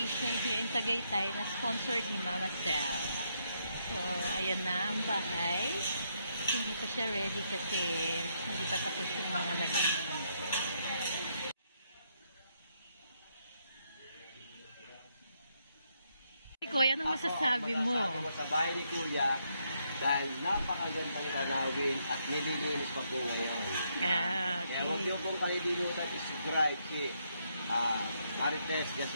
here in Tagaytay na sponsored ni Mama Sel. So, ayan na ang bahay. Hindi pa siya ready kasi hindi pa tapos yung mga naging. Kuya, anong masasabi mo? Sa bahay ni Kuya, dahil napakagandang tanawin at nililinis pa po ngayon. Yeah, okay. Kaya huwag niyo pong kalilimutan i-subscribe si Marites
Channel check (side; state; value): both; inverted; correlation -0.76